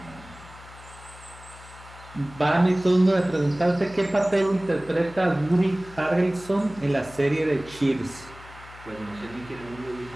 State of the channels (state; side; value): noise; left; hum, 19 dB below the sound